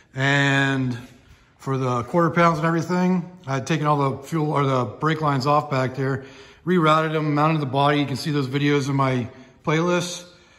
and for the quarter pounds and everything, I had taken all the fuel or the brake lines off back there, rerouted them, mounted the body. You can see those videos in my playlist.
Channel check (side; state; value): both; identical; correlation 1.00